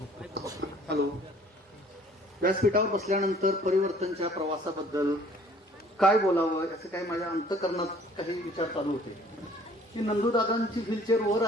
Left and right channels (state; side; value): normal; both; correlation 0.55